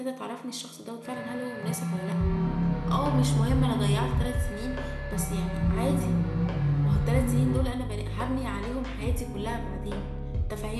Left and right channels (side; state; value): both; identical; correlation 1.00